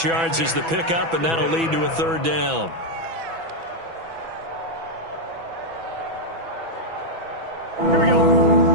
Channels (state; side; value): late; left; 6.1 ms